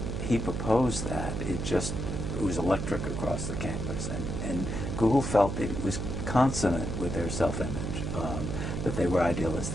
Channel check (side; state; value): right; noise; hum, 3 dB below the sound